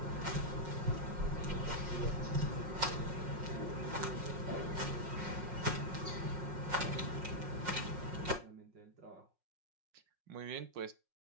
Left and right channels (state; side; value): late; left; 5.5 ms